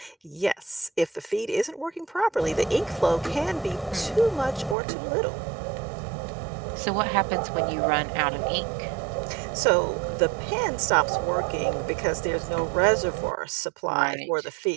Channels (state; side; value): drops out; left; at 4.8 s